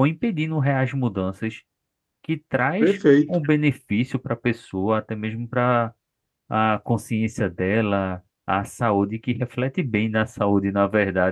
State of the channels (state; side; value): identical; both; correlation 1.00